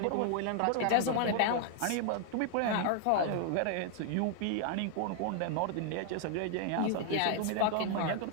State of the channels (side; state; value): both; different; correlation 0.00